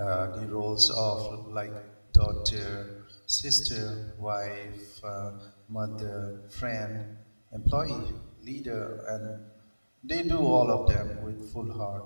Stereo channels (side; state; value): both; inverted; correlation -1.00